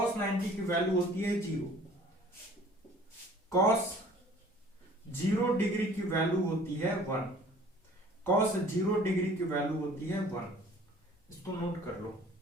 90 की वैल्यू होती है 0, cos 0 डिग्री की वैल्यू होती है 1, cos 0 डिग्री की वैल्यू होती है 1। इसको नोट कर लो।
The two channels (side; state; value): both; normal; correlation 0.51